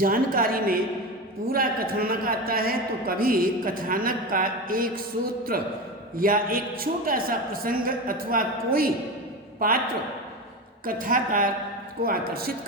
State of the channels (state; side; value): normal; both; correlation 0.23